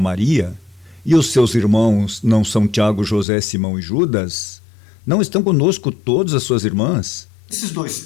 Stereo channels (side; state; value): right; drops out; at 3.2 s